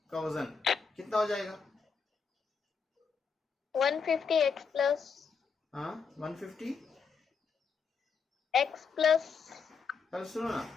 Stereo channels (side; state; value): right; quieter; 5.7 dB